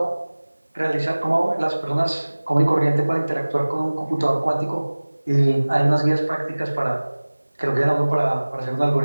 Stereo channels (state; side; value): inverted; both; correlation -1.00